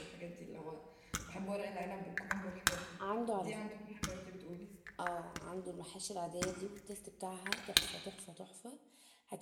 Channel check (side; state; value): both; identical; correlation 1.00